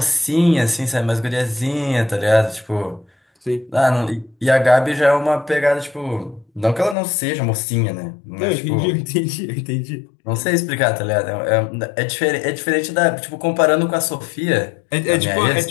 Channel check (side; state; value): right; drops out; at 7.0 s